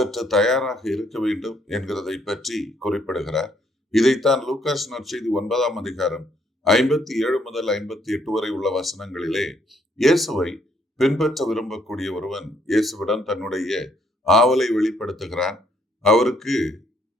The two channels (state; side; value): normal; both; correlation 0.69